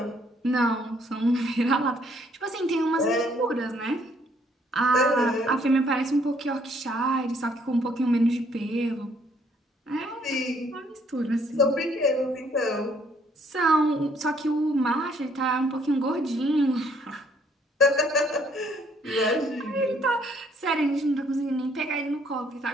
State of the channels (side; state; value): both; normal; correlation 0.66